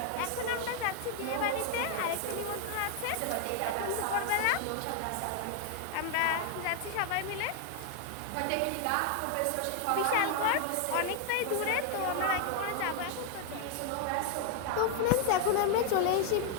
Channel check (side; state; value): both; different; correlation 0.00